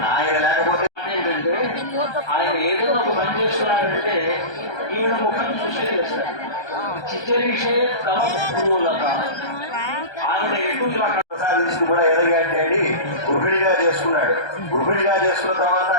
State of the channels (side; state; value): right; late; 1.3 ms